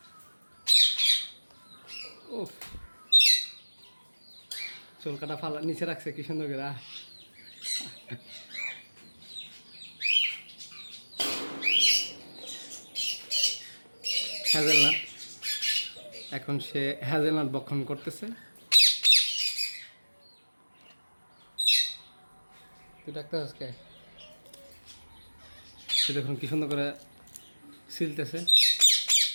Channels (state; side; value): inverted; both; correlation -1.00